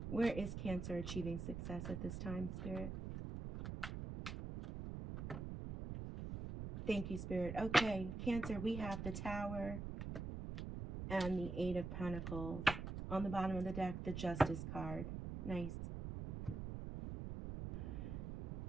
Where is Cancer achieving success at this time, Spirit? Thank you, Spirit. Okay, Cancer, we have the Tower and the Eight of Pentacles. On the bottom of the deck, the Justice card. Nice.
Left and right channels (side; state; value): right; noise; rumble, 5 dB below the sound